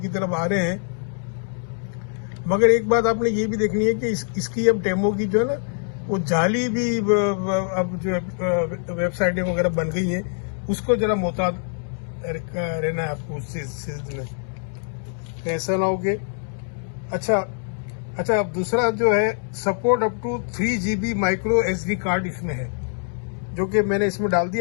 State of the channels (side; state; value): right; silent; 63 dB below the other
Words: तरफ आ रहे हैं। मगर एक बात आपने ये भी देखनी है कि इसकी अब टेमो की जो है ना वो जाली भी अब जो वेबसाइटें वगैरह बन गई हैं, उसको जरा मोहतात रहना है आपको उस चीज में, ऐसा ना हो कि अच्छा अब दूसरा जो है support up to 3 GB micro SD card इसमें है, जो कि मैंने इसमें डाल